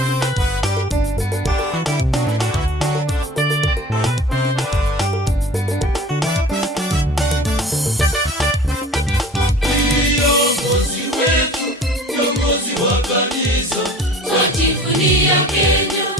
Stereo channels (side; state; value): both; normal; correlation 0.45